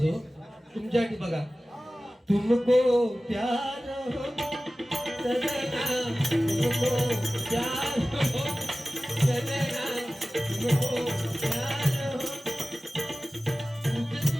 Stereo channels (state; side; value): normal; both; correlation 0.97